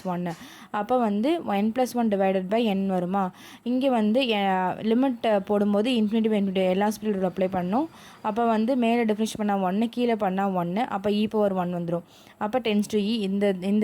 1. அப்போ வந்து n + 1 / n வருமா. இங்கே வந்து லிமிட் போடும்போது இன்ஃபினிட்டி எல்லா ஸ்பீடும் அப்ளை பண்ணணும். அப்போ வந்து மேலே டிஃபரன்ஷியேட் பண்ணால் 1, கீழே பண்ணால் 1. அப்போ e⁻1 வந்துடும். அப்போ tends to e இந்த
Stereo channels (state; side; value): identical; both; correlation 1.00